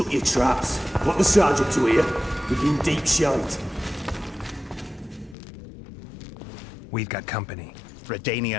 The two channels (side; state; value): right; drops out; at 5.4 s